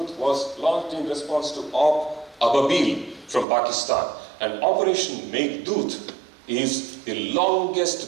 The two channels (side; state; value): left; drops out; at 3.5 s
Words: was launched in response to Op Ababil from Pakistan. And Operation Meghdoot is the